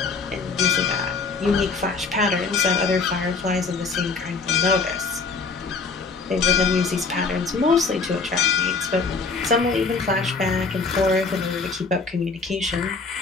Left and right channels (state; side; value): quieter; right; 4.5 dB